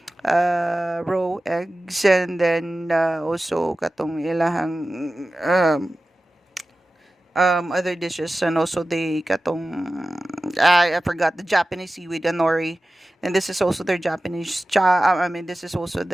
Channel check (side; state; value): both; normal; correlation 0.95